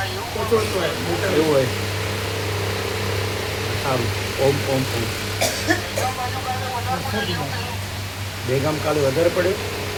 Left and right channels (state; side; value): identical; both; correlation 1.00